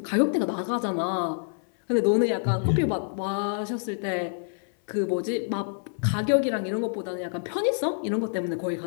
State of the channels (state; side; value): silent; right; 59 dB below the other